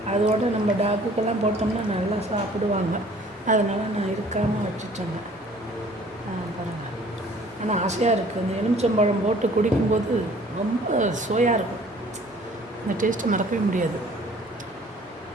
அதோடு நம்ம டாக்குக்கெல்லாம் போட்டோம்னா நல்லா சாப்பிடுவாங்க. அதனால் நான் இருக்காமல் வச்சுட்டேங்க. பாருங்கள். ஆனால் ஆசையாக இருக்குது. இந்த எலுமிச்சம்பழம் போட்டு குடிக்கும்போது ரொம்ப சுவையாக இருக்கும். அந்த டேஸ்ட்டை மறக்கவே முடியாது.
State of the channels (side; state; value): both; normal; correlation 0.54